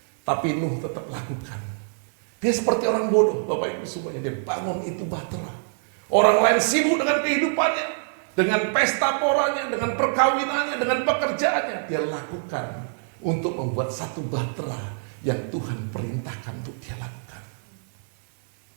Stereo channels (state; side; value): silent; left; digital silence